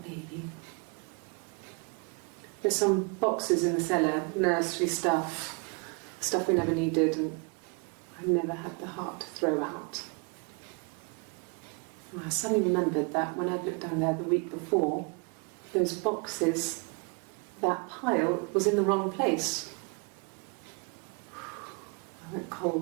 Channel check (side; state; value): left; quieter; 33.9 dB